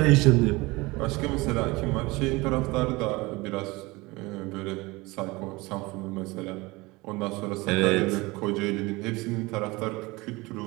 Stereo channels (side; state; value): left; quieter; 22.8 dB